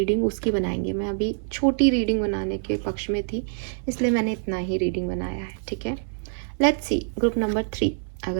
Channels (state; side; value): silent; left; 61 dB below the other